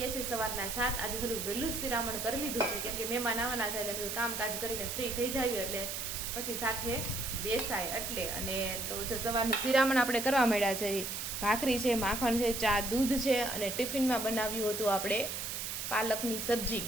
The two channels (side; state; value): right; noise; hiss, 4 dB below the sound